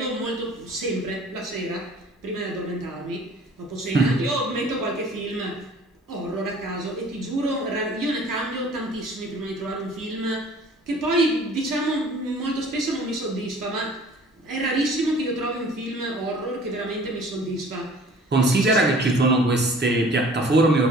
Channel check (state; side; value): normal; both; correlation 0.50